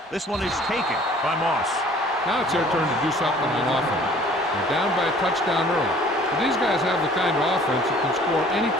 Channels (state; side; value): normal; both; correlation 0.53